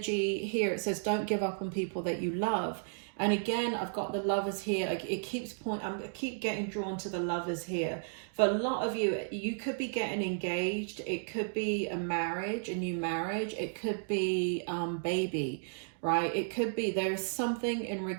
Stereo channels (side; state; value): left; silent; digital silence